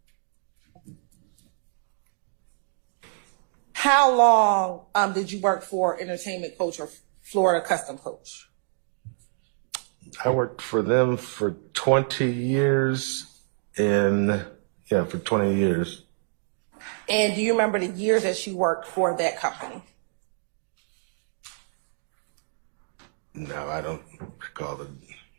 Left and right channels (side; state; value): left; silent; digital silence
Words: How long did you work for Entertainment Coach or Florida Custom Coach? I worked for them for 20 years, for 20 years. And do you remember the years that you worked for that company? No, I don't recall